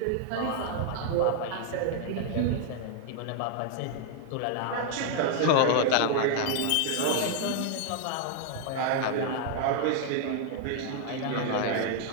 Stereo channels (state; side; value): different; both; correlation 0.00